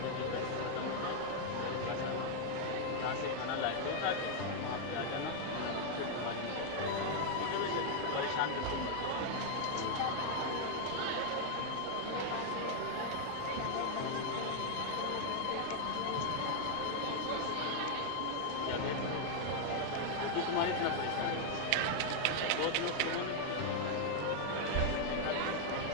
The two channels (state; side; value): different; both; correlation 0.00